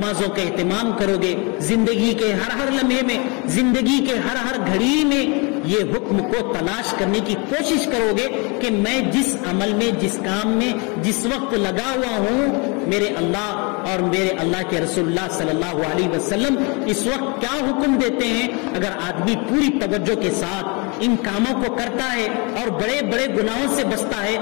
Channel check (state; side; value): quieter; right; 30.9 dB